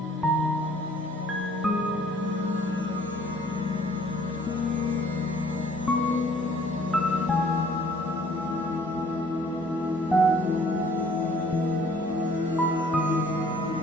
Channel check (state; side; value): normal; both; correlation 0.57